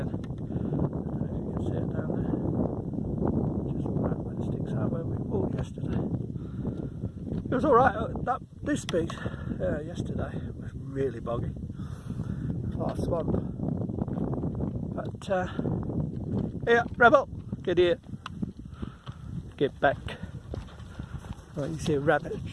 I don't know if you can see it down there. Just right when it sticks out where we walked yesterday. It was alright. This beach yesterday was really boggy. A lot of swamp. But yeah, Rebel, get here. Get back. Well, you see a rabbit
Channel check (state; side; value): identical; both; correlation 1.00